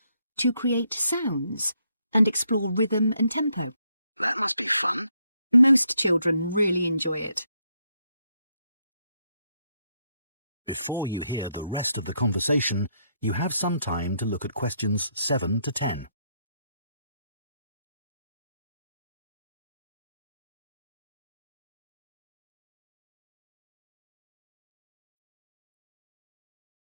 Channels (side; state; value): both; inverted; correlation -0.75